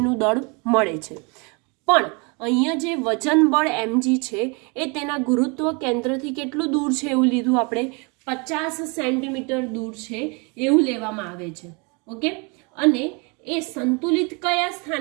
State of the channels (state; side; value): quieter; left; 31.4 dB